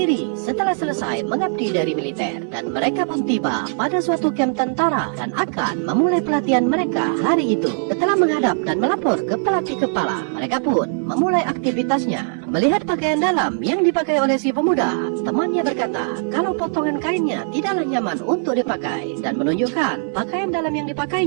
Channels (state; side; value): silent; left; 63 dB below the other